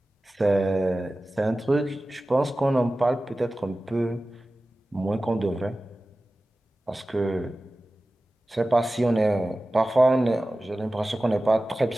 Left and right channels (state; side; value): normal; both; correlation 0.96